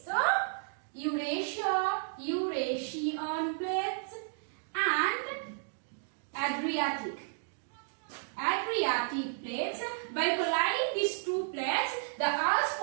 Eurasian plates and Adriatic plates. By colliding these two plates, the Alps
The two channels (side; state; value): left; silent; digital silence